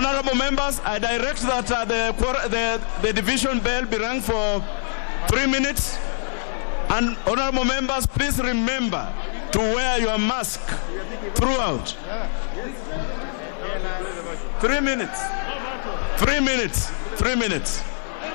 I direct that the division bell be rung for 3 minutes. And honorable members, please remember to wear your mask throughout. 3 minutes. 3 minutes. 3 minutes.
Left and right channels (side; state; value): right; silent; digital silence